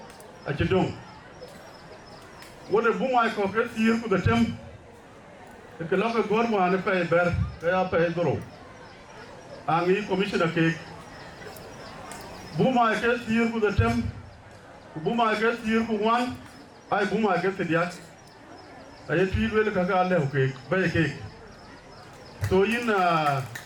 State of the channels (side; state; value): both; identical; correlation 1.00